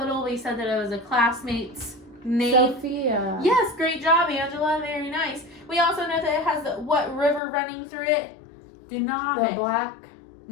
We said that it was a classmate's name. Sofia. Yes, great job, Angela. Very nice. We also know that it has what river running through it? Danube. The Black.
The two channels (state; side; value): drops out; right; at 7.4 s